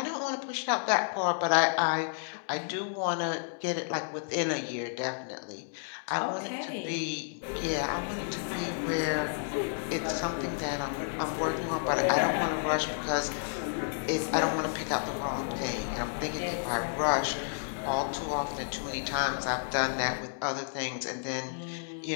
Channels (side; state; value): right; silent; digital silence